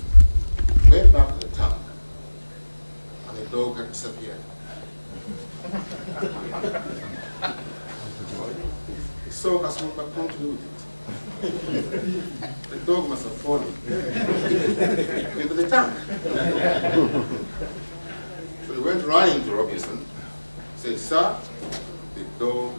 went back to the tank, and the dog had disappeared. So Kasumba continued it. The dog must have fallen into the tank. So he went running to Robinson, said, "Sir, the dog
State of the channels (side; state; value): both; inverted; correlation -1.00